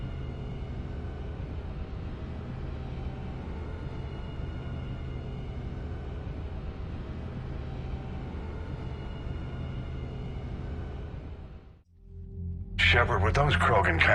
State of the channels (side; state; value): both; identical; correlation 1.00